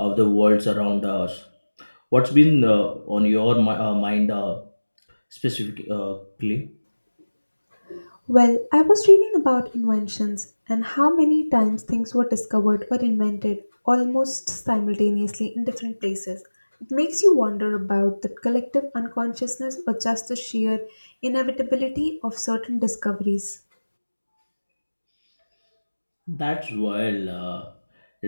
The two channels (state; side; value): inverted; both; correlation -1.00